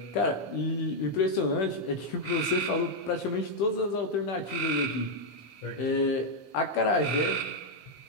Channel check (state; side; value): late; right; 15 ms